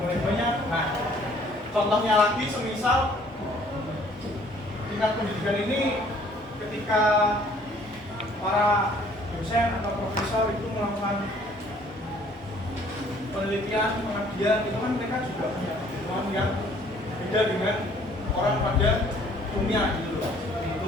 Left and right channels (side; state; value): both; normal; correlation 0.58